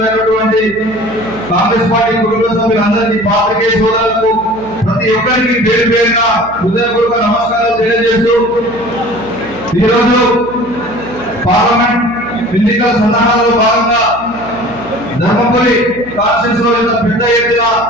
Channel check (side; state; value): right; noise; hum, 17 dB below the sound